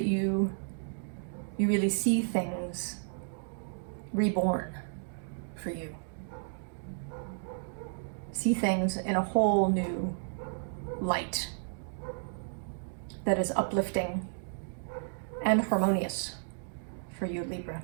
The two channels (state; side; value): silent; left; digital silence